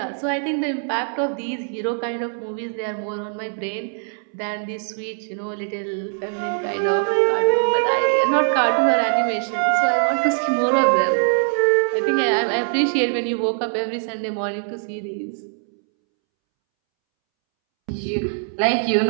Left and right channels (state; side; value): silent; left; 64 dB below the other